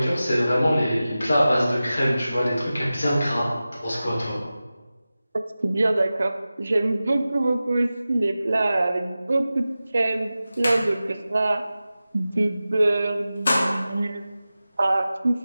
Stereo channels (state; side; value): inverted; both; correlation -0.95